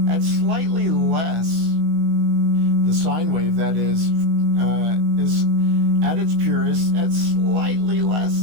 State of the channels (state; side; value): late; left; 19 ms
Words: at slightly less, the sine wave that is at its purest at slightly less